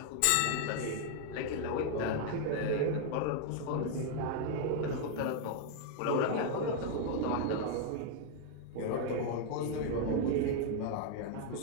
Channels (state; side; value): different; both; correlation 0.00